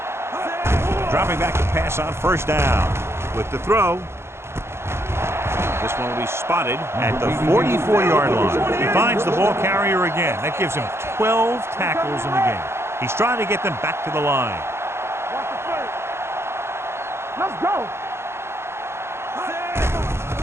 Dropping back to pass on 1st down. With the throw. This one will be spotted at the 44-yard line. He finds the ball carrier again. That gives him 12 tackles in the game. He's trying to get them back to the line. Watch the play. Let's go.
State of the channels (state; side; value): late; left; 0.12 ms